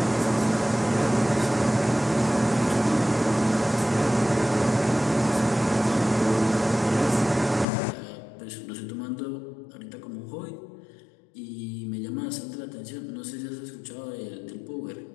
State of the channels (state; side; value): drops out; right; at 7.7 s